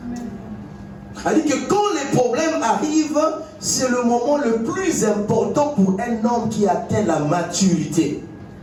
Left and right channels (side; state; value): both; identical; correlation 1.00